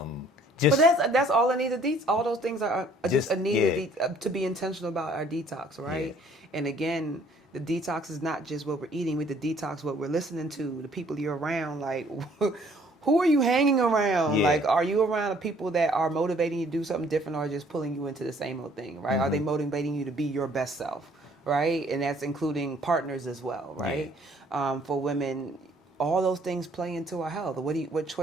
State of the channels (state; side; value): normal; both; correlation 0.59